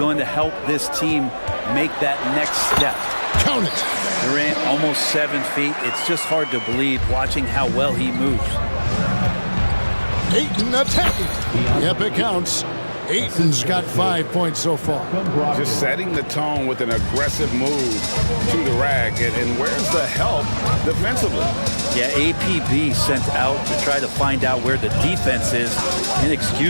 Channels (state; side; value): inverted; both; correlation -1.00